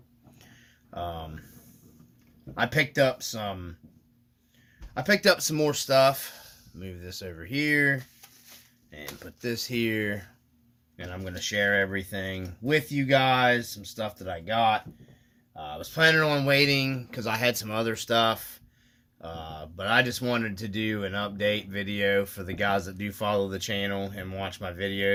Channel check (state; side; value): identical; both; correlation 1.00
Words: I picked up some more stuff. Move this over here and put this here, and I'm gonna share everything with you guys. Some stuff that I got. I was planning on waiting because I had some other stuff, but I just wanted to do an update video for the guys that do follow the channel and watch my